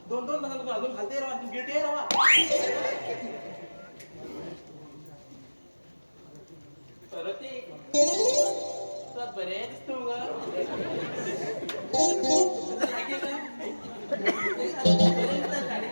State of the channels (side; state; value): both; inverted; correlation -1.00